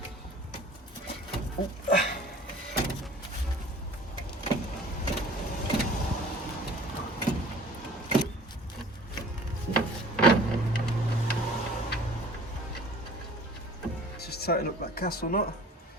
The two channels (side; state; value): both; normal; correlation 0.48